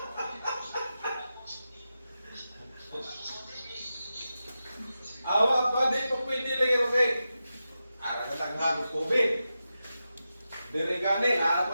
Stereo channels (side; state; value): both; inverted; correlation -0.91